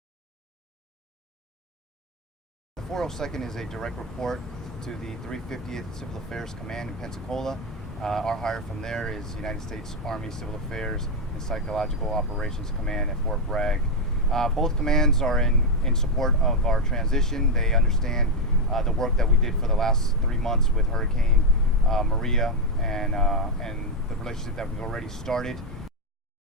The 402nd is a direct report to the 350th Civil Affairs Command in Pensacola. Our hire from there is United States Army Civil Affairs and Psychological Operations Command at Fort Bragg. Both commands are in support of our transition. They understand the work that we did for the last 3 months with Hurricane Maria and the relationship that we've already started.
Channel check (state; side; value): normal; both; correlation 0.05